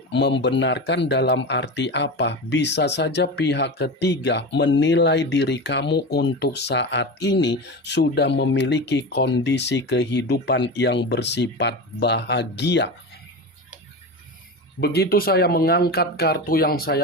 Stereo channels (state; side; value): normal; both; correlation 0.24